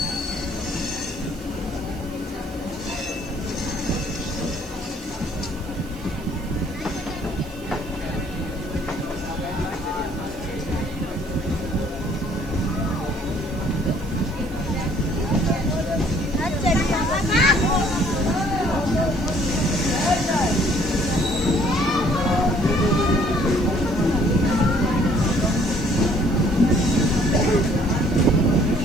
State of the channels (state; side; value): noise; right; hiss, 22 dB below the sound